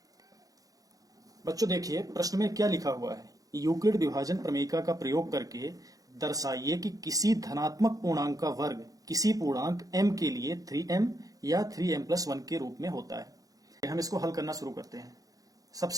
बच्चों देखिए, प्रश्न में क्या लिखा हुआ है। यूक्लिड विभाजन प्रमेयिका का प्रयोग करके दर्शाइए कि किसी धनात्मक पूर्णांक का वर्ग किसी पूर्णांक m के लिए 3m या 3m+1 के रूप में होता है। हम इसको हल करना शुरू करते हैं।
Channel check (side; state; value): left; late; 0.17 ms